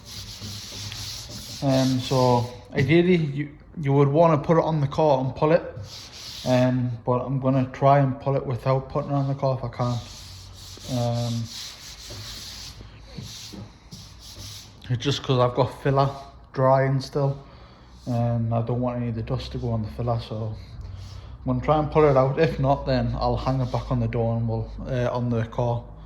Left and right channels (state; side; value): identical; both; correlation 1.00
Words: So ideally you would want to put it on the car and pull it, but I'm going to try and pull it without putting it on the car if I can. It's just because I've got filler drying still, and I don't want any of the dust to go on the filler, so I'm going to try and pull it out. If not, then I'll hang it back on the door and we'll on the car,